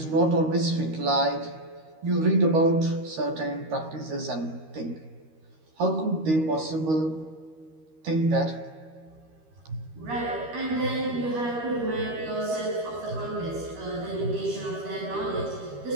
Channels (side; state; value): left; late; 13 ms